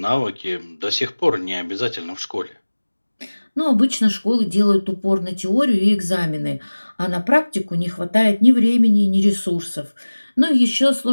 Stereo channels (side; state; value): both; inverted; correlation -1.00